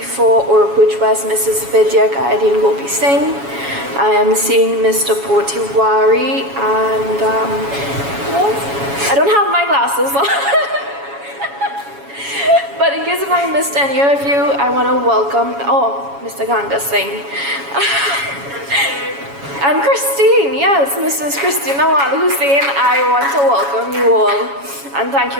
for Oropuch West, Mrs. Vidya Gayadeen Gopi Singh. I am seeing Mr. Potiwari and I don't have my glasses on. But in case if I missed any of you, I want to welcome, Mr. Ganga Singh. And Christine, yes, Mrs. Christine Nawal Hussein, I want to welcome you all and thank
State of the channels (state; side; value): late; left; 7.2 ms